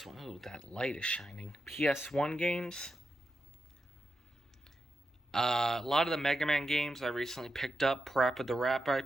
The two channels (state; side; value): normal; both; correlation 0.87